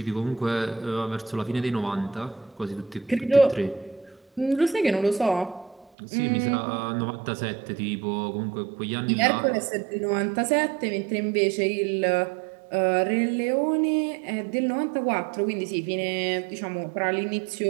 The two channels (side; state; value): left; drops out; at 5.9 s